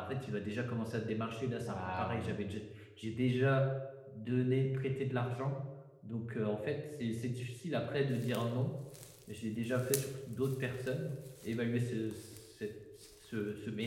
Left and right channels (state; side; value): identical; both; correlation 1.00